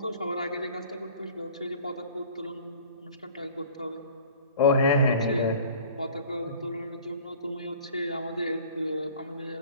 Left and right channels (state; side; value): inverted; both; correlation -0.47